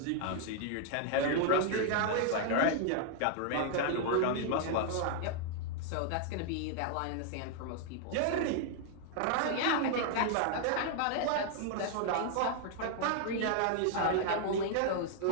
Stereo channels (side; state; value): both; different; correlation 0.00